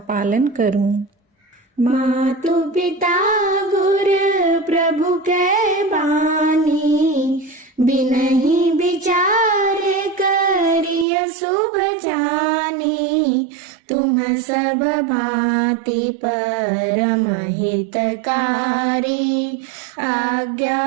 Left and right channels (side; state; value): left; drops out; at 11.1 s